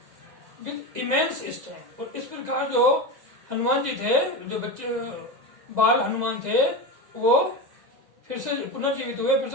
with immense strength. और इस प्रकार जो हनुमान जी थे, जो बच्चे बाल हनुमान थे, वो फिर से पुनर्जीवित हुए, फिर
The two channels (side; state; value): left; late; 2.0 ms